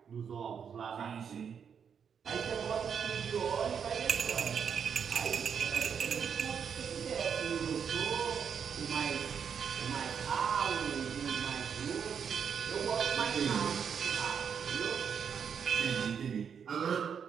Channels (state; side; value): quieter; left; 7.2 dB